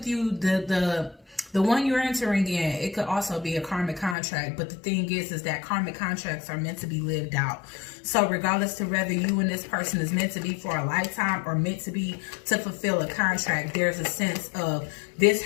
you, the one you're entering in, it could also be a karmic contract. But the thing is that karmic contracts are meant to be lived out. So regardless to whether you and this person is meant to be for a lifetime or meant to be to fulfill a contract, there's a sense of this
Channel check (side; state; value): right; drops out; at 4.2 s